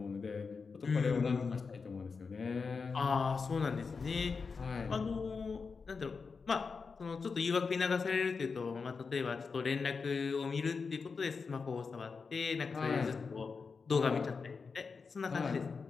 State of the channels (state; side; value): quieter; right; 5.0 dB